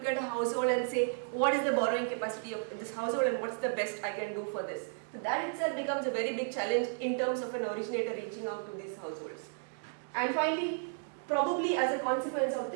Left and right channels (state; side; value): silent; left; digital silence